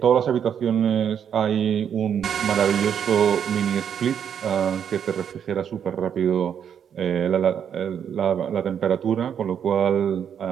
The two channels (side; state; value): left; quieter; 8.3 dB